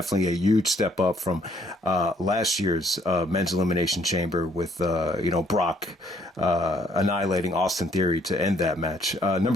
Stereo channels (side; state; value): both; normal; correlation 0.65